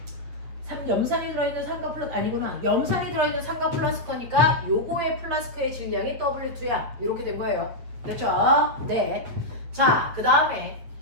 염산이 들어있는 삼각 플라스크 아니구나. 염산이 들어있는 삼각 플라스크니까 요거의 플라스크의 질량이 W2야. 이렇게 된 거예요. 됐죠? 네. 자, 그 다음에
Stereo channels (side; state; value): left; late; 8.5 ms